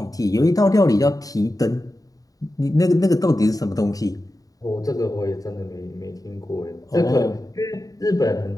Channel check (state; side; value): late; right; 0.17 ms